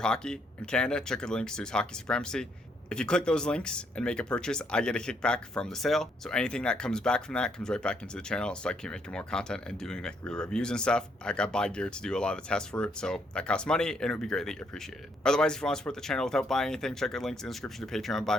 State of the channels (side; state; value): both; normal; correlation 0.72